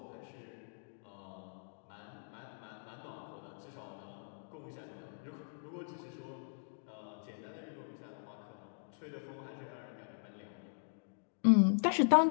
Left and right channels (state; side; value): silent; right; digital silence